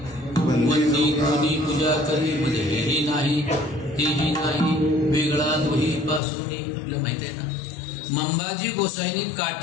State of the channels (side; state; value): right; drops out; at 6.2 s